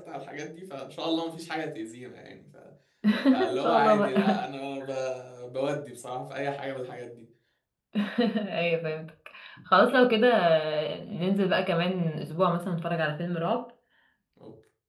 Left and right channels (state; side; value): identical; both; correlation 1.00